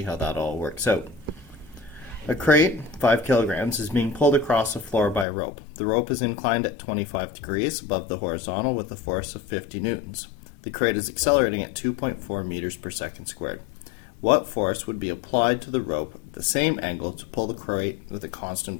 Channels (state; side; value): drops out; right; at 5.2 s